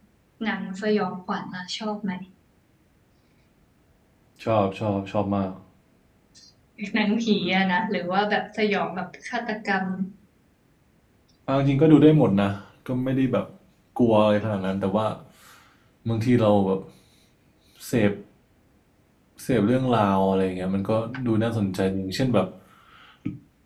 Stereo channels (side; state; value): both; identical; correlation 1.00